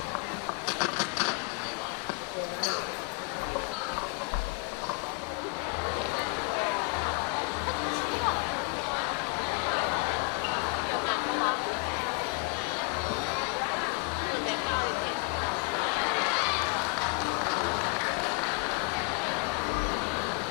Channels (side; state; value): right; quieter; 30.8 dB